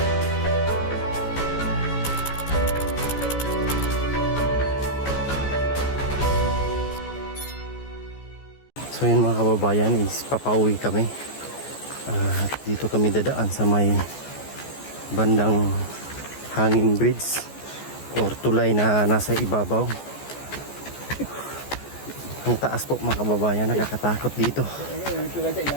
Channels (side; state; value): right; late; 14 ms